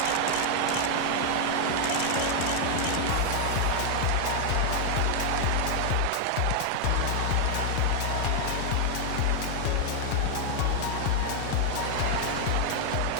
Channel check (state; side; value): different; both; correlation 0.00